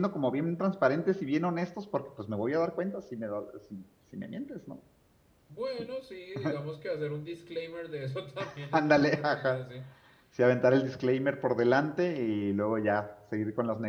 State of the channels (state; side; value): identical; both; correlation 1.00